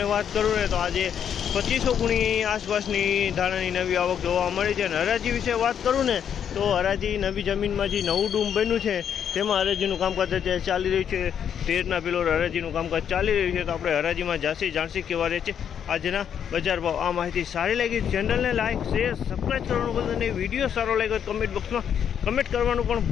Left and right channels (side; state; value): right; quieter; 8.5 dB